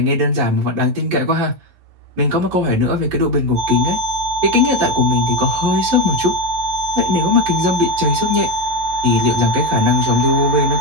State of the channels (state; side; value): late; left; 11 ms